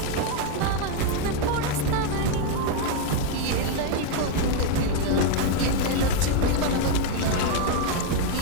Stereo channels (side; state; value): both; different; correlation 0.01